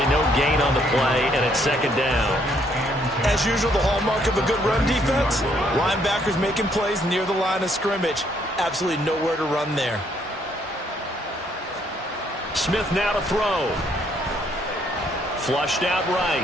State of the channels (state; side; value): normal; both; correlation 0.69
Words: no gain on the play, and it's second down. As usual, the hallmark of a good run defense, linebackers making plays near the line of scrimmage. Absolutely nowhere to run there. Smith now to throw. Flushed out